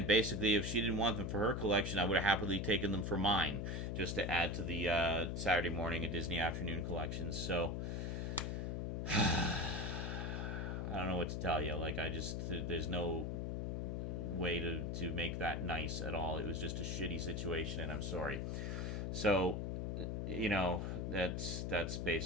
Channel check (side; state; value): left; noise; hum, 2 dB below the sound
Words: basically, if she didn't want them for her collection, I would have happily taken them for mine, just to add to the Saturday morning and Disney Afternoon collections. So I don't know what to tell you. There's no way to make that nice at all. It was just a shitty situation, and I'm sorry. So, that's